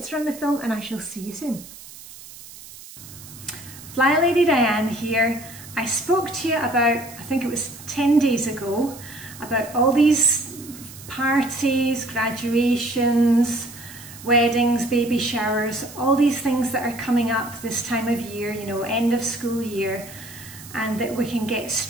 run the film and I shall see you soon. Flylady Diane here. I spoke to you about, I think it was 10 days ago, about all these parties, graduations, weddings, baby showers, all these things that are coming up this time of year, end of school year, and that we can get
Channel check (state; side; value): noise; right; hiss, 17 dB below the sound